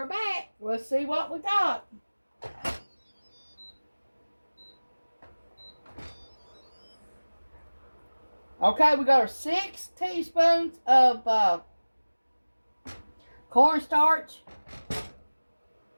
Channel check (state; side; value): inverted; both; correlation -1.00